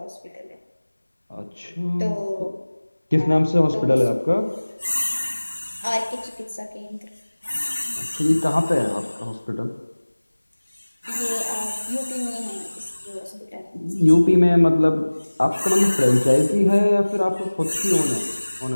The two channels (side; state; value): both; inverted; correlation -1.00